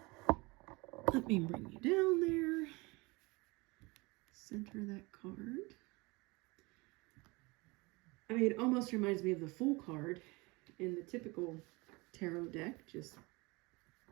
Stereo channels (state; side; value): quieter; left; 25.2 dB